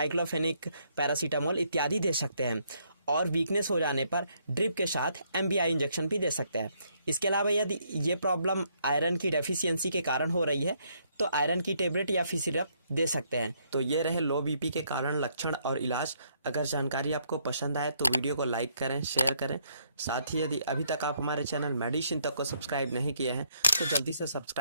पैरासीटामोल इत्यादि दे सकते हैं। और वीकनेस हो जाने पर ड्रिप के साथ एमबीआई इंजेक्शन भी दे सकते हैं। इसके अलावा यदि ये प्रॉब्लम आयरन की डेफिशिएंसी के कारण हो रही है तो आयरन की टेबलेट या फिर सिरप दे सकते हैं। तो ये रहे लो बीपी के कारण, लक्षण और इलाज। अगर जानकारी आपको पसंद आए तो वीडियो को लाइक करें, शेयर करें। साथ ही यदि अभी तक आप हमारे चैनल मेडिसिन तक को सब्सक्राइब नहीं किए हैं तो जल्दी से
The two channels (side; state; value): both; inverted; correlation -0.71